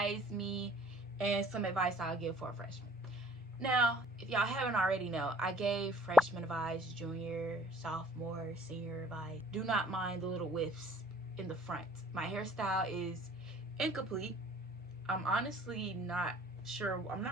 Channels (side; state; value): both; normal; correlation 0.55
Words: me, and some advice I'll give for a freshman. Now, if y'all haven't already know, I gave freshman advice, junior, sophomore, senior advice. Do not mind the little whiffs in the front. My hairstyle is incomplete. I'm honestly not sure. I'm